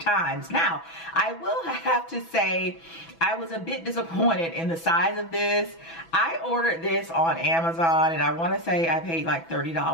Now, I will have to say I was a bit disappointed in the size of this. I ordered this on Amazon, and I want to say I paid like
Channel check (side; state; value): right; late; 6.0 ms